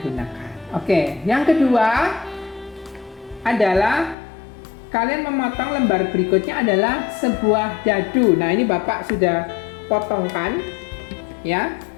gunakan. Oke, yang kedua adalah kalian memotong lembar berikutnya adalah sebuah dadu. Nah, ini Bapak sudah potongkan ya.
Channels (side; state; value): right; drops out; at 4.2 s